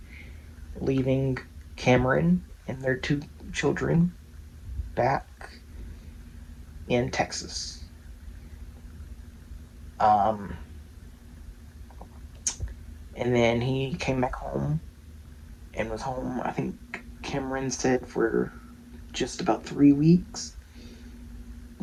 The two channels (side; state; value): both; identical; correlation 1.00